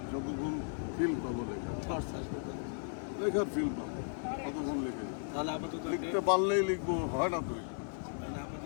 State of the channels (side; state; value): right; silent; 54 dB below the other